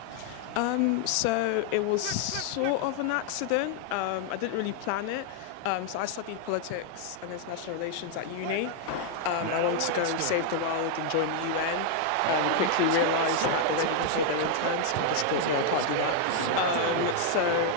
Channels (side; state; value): both; different; correlation 0.00